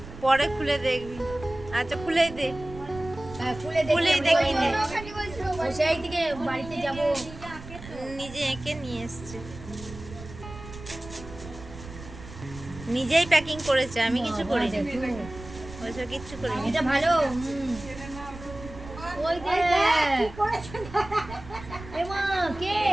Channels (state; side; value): noise; right; rumble, 14 dB below the sound